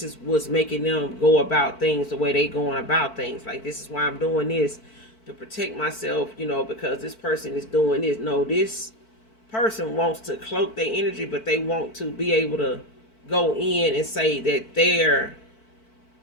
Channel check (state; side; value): late; right; 4.5 ms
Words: is what's making them go about things the way they going about things. Like, this is why I'm doing this, to protect myself, because this person is doing this. No, this person wants to cloak their energy, but they want to be able to go in and say that their